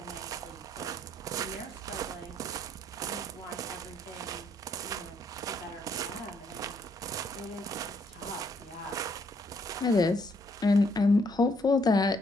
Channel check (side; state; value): both; normal; correlation 0.70